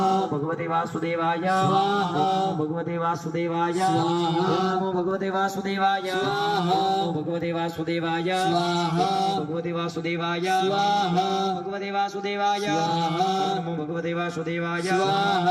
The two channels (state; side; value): identical; both; correlation 1.00